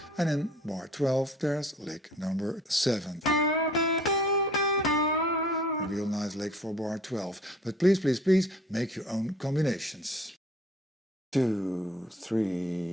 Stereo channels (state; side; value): normal; both; correlation 0.53